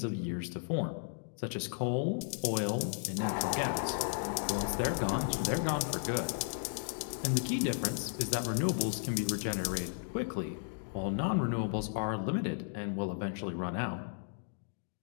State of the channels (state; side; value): silent; right; digital silence